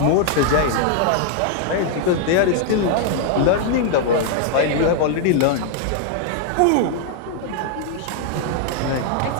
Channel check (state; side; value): different; both; correlation 0.00